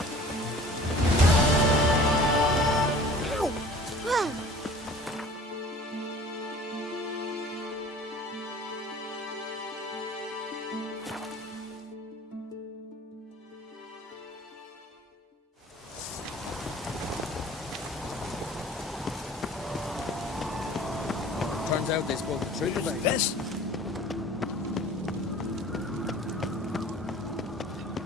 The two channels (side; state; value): both; normal; correlation 0.46